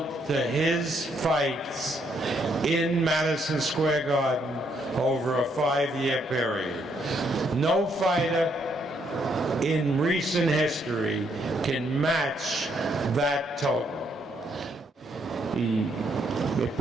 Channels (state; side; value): normal; both; correlation 0.73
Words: to his fights in Madison Square Garden over a 5-year period. No fighter in recent history can match that total. Y